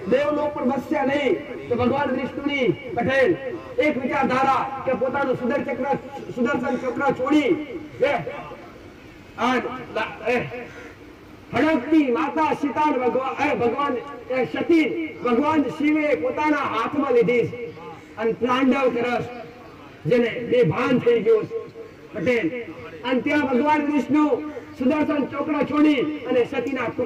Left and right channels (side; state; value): both; identical; correlation 1.00